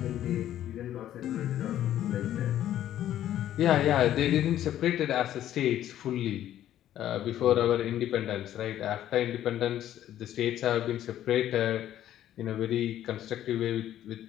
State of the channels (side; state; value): right; quieter; 12.0 dB